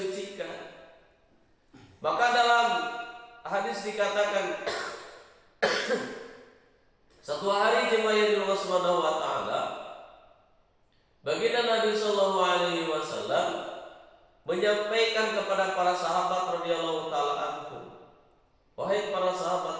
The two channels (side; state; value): both; identical; correlation 1.00